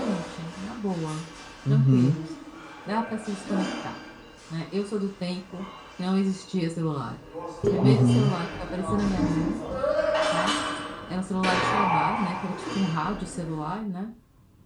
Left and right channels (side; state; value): both; identical; correlation 1.00